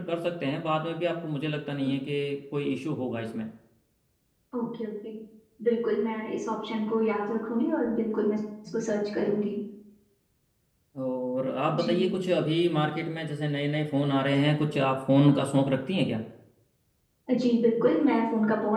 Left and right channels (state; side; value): identical; both; correlation 1.00